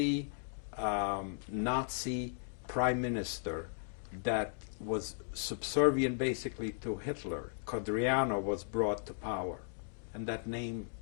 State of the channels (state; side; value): silent; right; digital silence